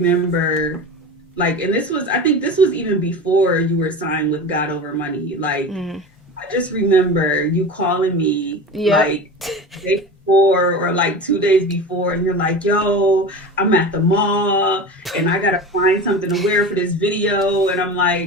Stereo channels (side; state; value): both; normal; correlation 0.30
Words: like, and I think this was even before you were signed with God Over Money. Like, I just remember you calling me like the day before or like 2 days before, and you're like, yo, I'm at the mall and I gotta find something to wear for this video. And I'm